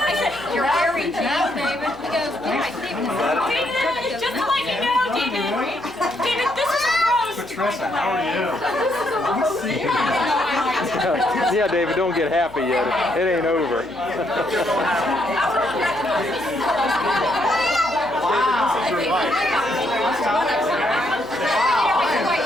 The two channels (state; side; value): noise; left; hum, 24 dB below the sound